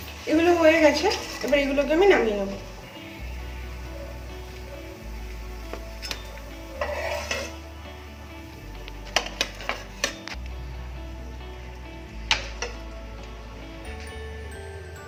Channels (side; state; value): both; identical; correlation 1.00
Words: এগুলো হয়ে গেছে, এবার এগুলোকে আমি নামিয়ে নেব।